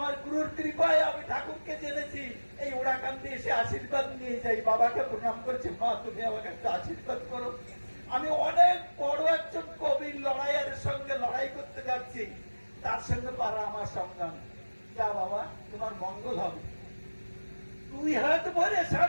গুরুর কৃপায় আমি ঠাকুরকে জেনেছি, এই ওড়াকান্দি এসে আশীর্বাদ নিয়ে যাই। বাবাকে প্রণাম করছে, মা তুমি আমাকে একটা আশীর্বাদ করো, আমি অনেক বড় একজন কবির লড়াইয়ের সঙ্গে লড়াই করতে যাচ্ছি, তার সঙ্গে পারা আমার সংগ্রাম। যা বাবা, তোমার মঙ্গল হবে। দুই হাত ভরে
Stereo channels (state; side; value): inverted; both; correlation -1.00